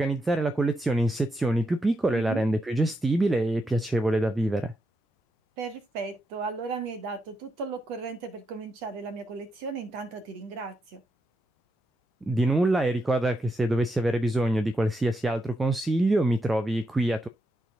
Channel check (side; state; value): both; normal; correlation 0.83